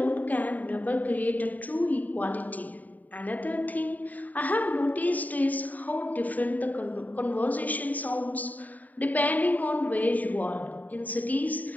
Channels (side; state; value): right; late; 0.078 ms